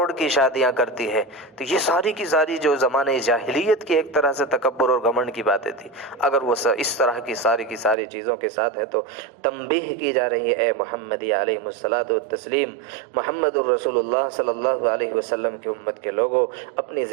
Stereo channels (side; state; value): left; drops out; at 8.0 s